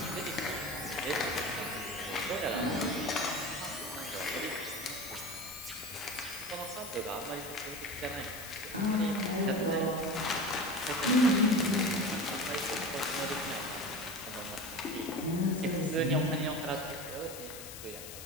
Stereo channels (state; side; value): noise; left; hiss, 11 dB below the sound